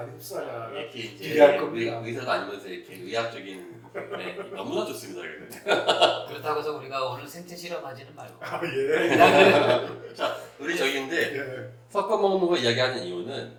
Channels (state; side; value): identical; both; correlation 1.00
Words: 흡수하냐. 이렇게 이제 기대할 겁니다. 의사가 아니면서 이렇게 의학적인 네, 너무나 좋습니다. 그렇다고 해서 우리가 오늘 생체 실험하지는 말고. 아 예. 자, 우리 저기인데 예. 섞어 먹는 거 이야기하는 이유는